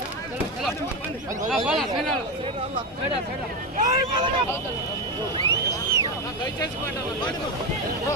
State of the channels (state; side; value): normal; both; correlation 0.14